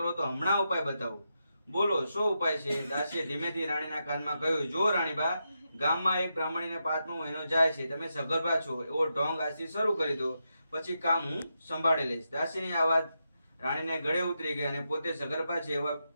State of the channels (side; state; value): both; inverted; correlation -0.86